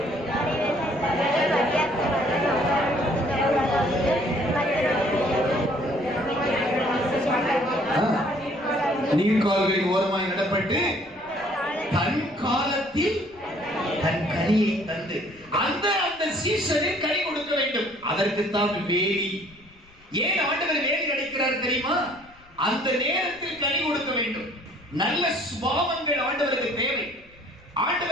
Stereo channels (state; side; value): noise; left; rumble, 28 dB below the sound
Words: நீர்கால்களின் ஓரமாய் நடப்பட்டு தன் காலத்தில் தன் கனியை தந்து அந்த சீசனில் கனி கொடுக்க வேண்டும். அதற்குத்தான் வேலி. ஏன் ஆண்டவர் வேலி அடைக்கிறார் தெரியுமா? அந்த நேரத்தில் கனி கொடுக்க வேண்டும். நல்ல சுபாவங்கள் ஆண்டவருக்கு தேவை.